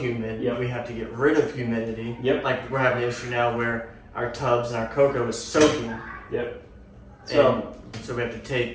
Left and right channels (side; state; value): both; identical; correlation 1.00